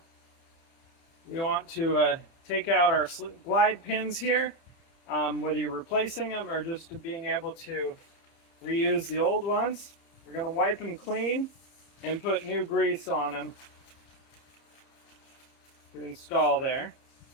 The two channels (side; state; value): right; late; 30 ms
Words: we want to take out our glide pins here, whether you're replacing them or just being able to reuse the old ones. We're going to wipe them clean and put new grease on them to install there.